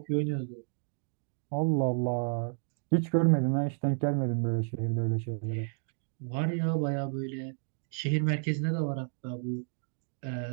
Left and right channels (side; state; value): left; silent; 57 dB below the other